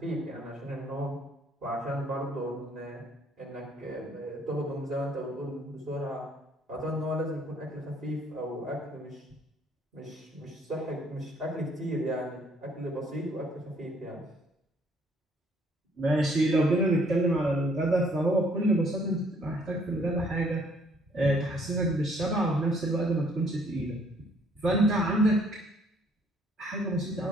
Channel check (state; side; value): normal; both; correlation 0.63